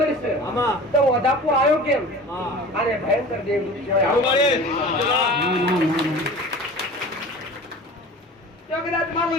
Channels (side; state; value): both; normal; correlation 0.39